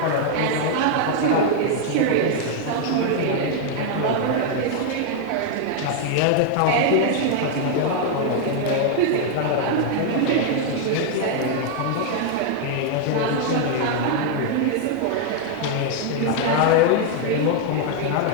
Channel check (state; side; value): different; both; correlation 0.00